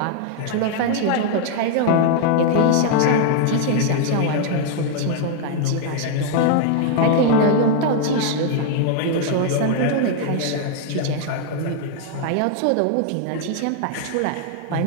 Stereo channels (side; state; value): both; different; correlation 0.00